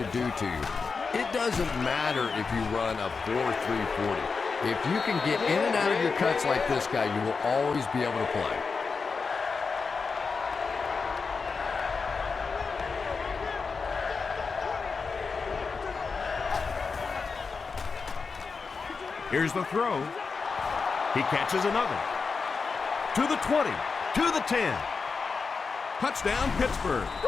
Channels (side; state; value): right; quieter; 4.9 dB